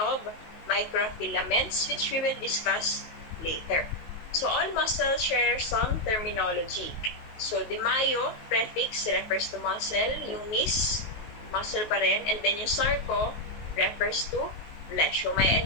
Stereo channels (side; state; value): right; late; 19 ms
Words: microfilaments, which we will discuss later. So, all muscles share some terminology. So, the myo prefix refers to muscle, yung mis, muscle pa rin, and then yung sarco refers to flesh. So, may